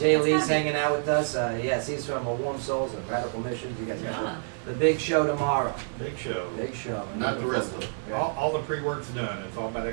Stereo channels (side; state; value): left; silent; digital silence